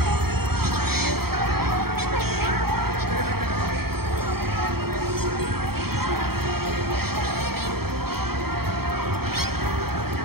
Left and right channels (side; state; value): left; late; 0.95 ms